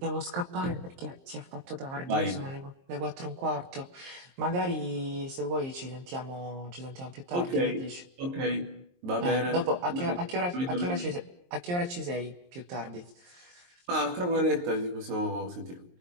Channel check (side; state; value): left; late; 23 ms